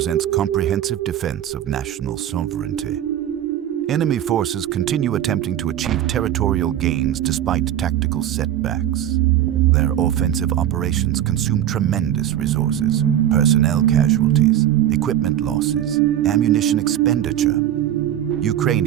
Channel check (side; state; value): left; quieter; 11.4 dB